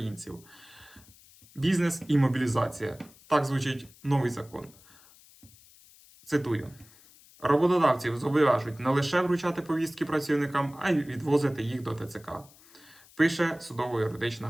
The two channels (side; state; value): left; noise; hiss, 25 dB below the sound